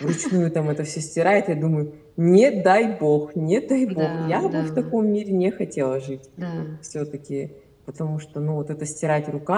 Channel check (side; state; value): both; identical; correlation 1.00